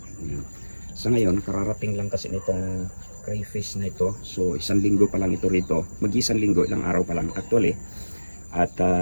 Sa ngayon, kararating lang kasi nitong crayfish na ito. So, 1 linggo pa lang ito rito. Mag-1 linggo, ilang araw pa lang actually. At,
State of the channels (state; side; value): inverted; both; correlation -1.00